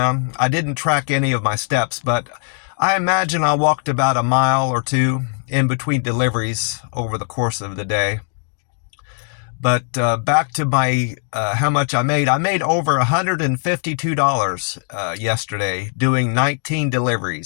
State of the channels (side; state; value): right; silent; 61 dB below the other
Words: I didn't track any of my steps, but I imagine I walked about a mile or two in between deliveries over the course of the day. But back to my how much I made. I made over $152 yesterday doing 19